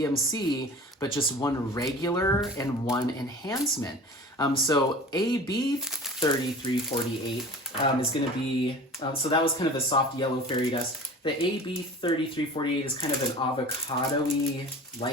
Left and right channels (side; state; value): both; normal; correlation 0.40